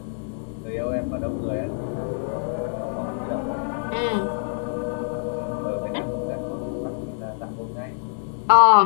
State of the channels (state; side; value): silent; right; digital silence